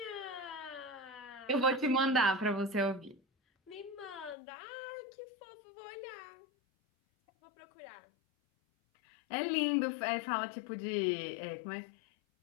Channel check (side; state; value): right; drops out; at 4.4 s